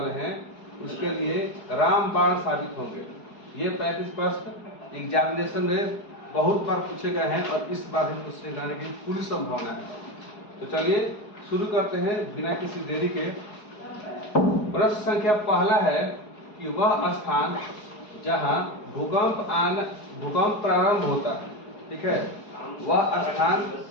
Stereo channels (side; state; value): right; late; 4.7 ms